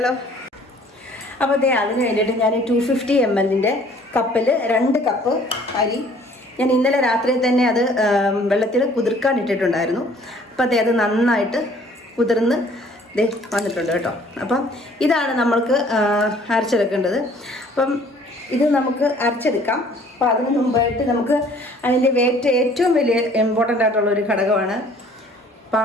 അപ്പോൾ അതിന് വേണ്ടിയിട്ട് ഞാൻ 250 ml കപ്പിൽ 2 കപ്പ് അരി ഞാൻ ഇന്നലെ രാത്രി തന്നെ അത് വെള്ളത്തിൽ കുതിർക്കാൻ ഇട്ടിട്ടുണ്ടായിരുന്നു. അപ്പോൾ അത് നന്നായിട്ട് കുതിർന്ന് വന്നിട്ടുണ്ട് കേട്ടോ. അപ്പം ഇതാണ് നമ്മൾക്ക് അരച്ചെടുക്കേണ്ടത്. അപ്പം ഇത് നമുക്ക് അരച്ചെടുക്കാം. അപ്പോൾ അതിന് മുമ്പായിട്ട് നമുക്ക് അതിൻ്റെ ഏറ്റവും വലിയ ഇമ്പോർട്ടൻ്റ് ആയിട്ടുള്ളൊരു ഘടകമാണ്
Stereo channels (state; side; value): normal; both; correlation 0.56